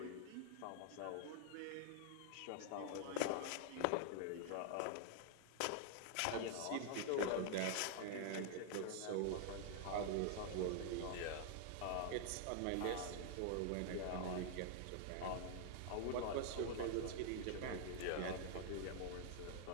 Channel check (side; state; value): both; different; correlation -0.01